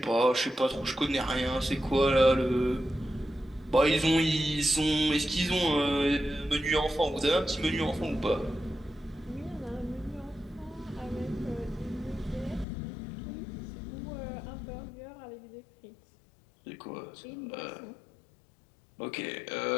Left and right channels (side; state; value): right; drops out; at 12.7 s